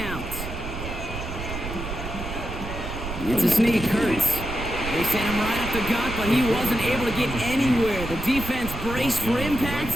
It's a sneak. Hurts. They sent him right up the gut, but he wasn't able to get anywhere. The defense braced for impact,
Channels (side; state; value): right; noise; rumble, 7 dB below the sound